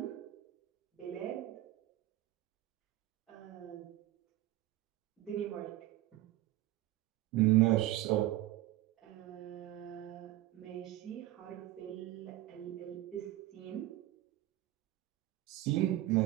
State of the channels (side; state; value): left; quieter; 15.8 dB